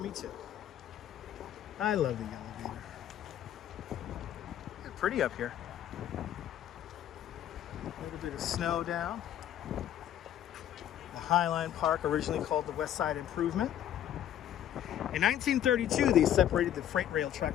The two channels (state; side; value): quieter; right; 10.9 dB